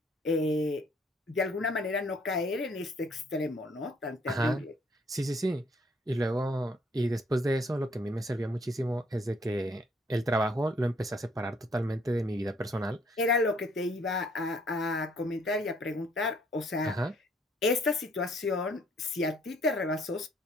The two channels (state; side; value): normal; both; correlation 0.64